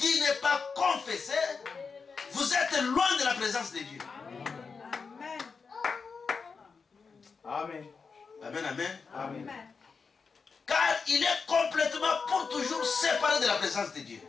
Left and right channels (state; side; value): quieter; right; 5.1 dB